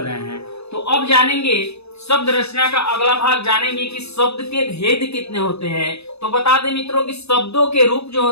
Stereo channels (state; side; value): late; right; 0.79 ms